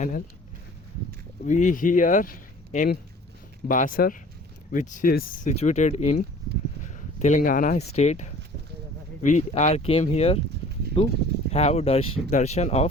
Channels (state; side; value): normal; both; correlation 0.48